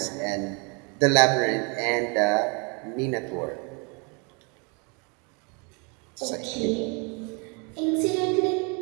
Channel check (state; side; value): quieter; left; 33.2 dB